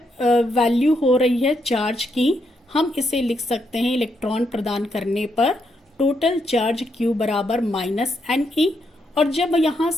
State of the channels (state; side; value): normal; both; correlation 0.78